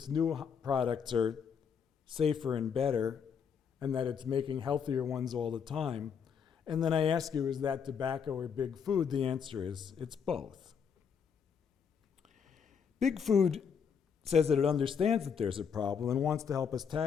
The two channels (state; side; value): quieter; right; 6.9 dB